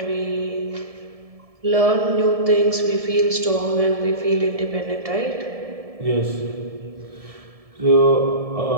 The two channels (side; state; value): left; late; 1.7 ms